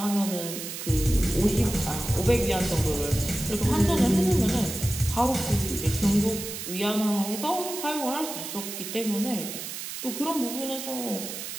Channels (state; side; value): noise; right; hiss, 7 dB below the sound